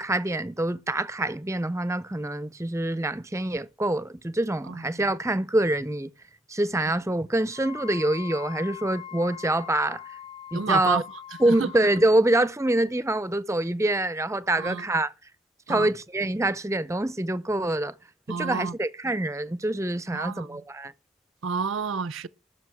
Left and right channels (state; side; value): normal; both; correlation 0.70